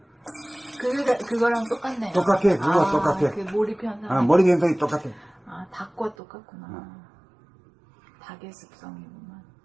그거랑 똑같네요. 똑같아, 그거 똑같아. 그 몰입현상. 머리 현상이 똑같아. 닭과 똑같구나. 닭의 습성이구나.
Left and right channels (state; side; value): drops out; left; at 6.2 s